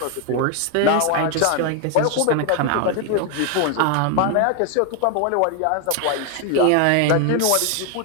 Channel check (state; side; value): different; both; correlation 0.01